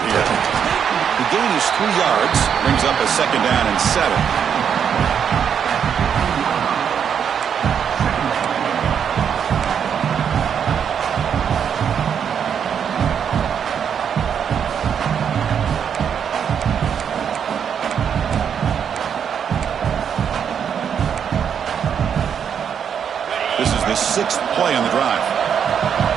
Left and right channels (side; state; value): left; quieter; 7.8 dB